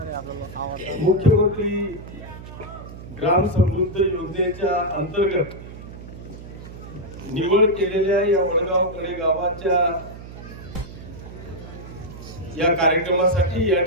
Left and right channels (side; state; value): right; noise; hum, 14 dB below the sound